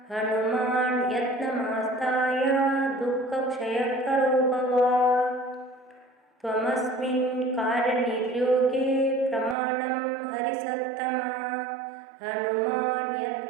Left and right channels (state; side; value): drops out; left; at 9.6 s